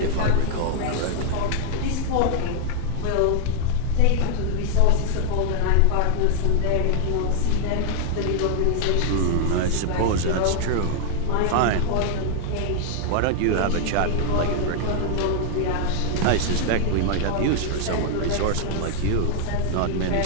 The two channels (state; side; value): different; both; correlation 0.00